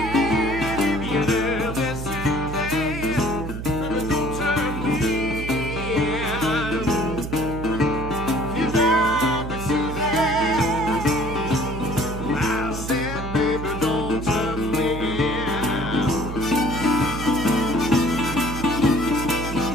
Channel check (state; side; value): noise; right; hum, 7 dB below the sound